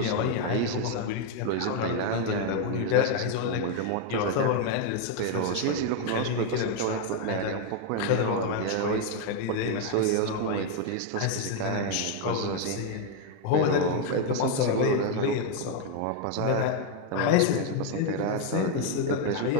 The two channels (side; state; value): both; different; correlation 0.01